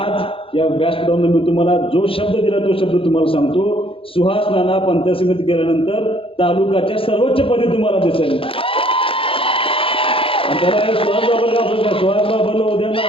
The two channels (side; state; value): right; late; 0.26 ms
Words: या व्यासपीठावरून मी तुम्हाला जो शब्द दिला तो शब्द तुम्हाला सांगतो. सुहास नाना पंचायत समिती गेल्यानंतर तालुक्याच्या सर्वोच्च पदी तुम्हाला दिसेल. सुहास बाबरला उद्या